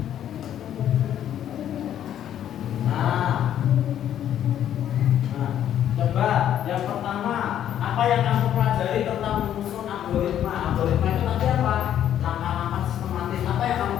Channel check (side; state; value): right; quieter; 10.6 dB